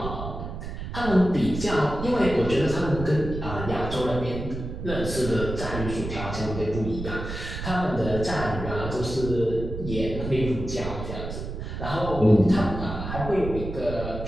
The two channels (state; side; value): noise; right; rumble, 7 dB below the sound